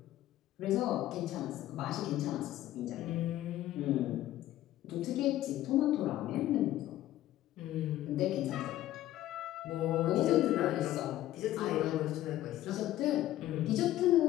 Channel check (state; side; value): quieter; right; 14.1 dB